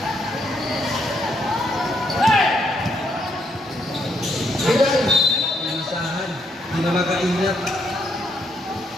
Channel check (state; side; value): normal; both; correlation 0.74